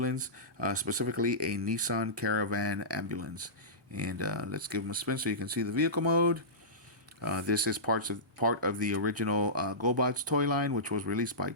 specifically a Nissan Caravan ambulance. And let's give him a spin so you can see the vehicle mode. This is part of the original GoBots toy line, which was released by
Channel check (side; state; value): both; normal; correlation -0.19